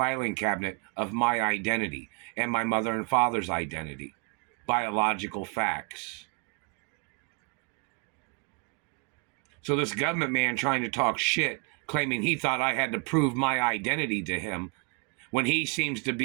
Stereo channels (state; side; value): quieter; left; 35.4 dB